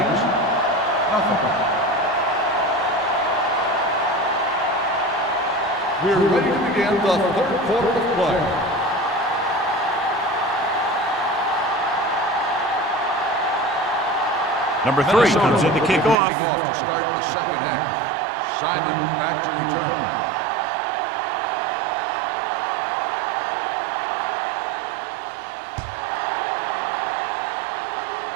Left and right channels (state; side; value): drops out; left; at 16.2 s